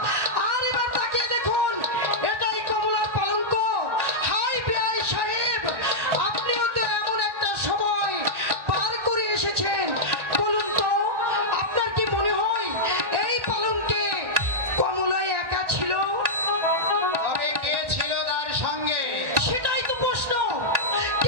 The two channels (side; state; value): left; late; 1.4 ms